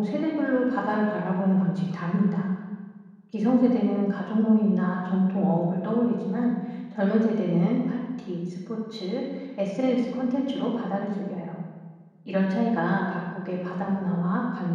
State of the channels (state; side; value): identical; both; correlation 1.00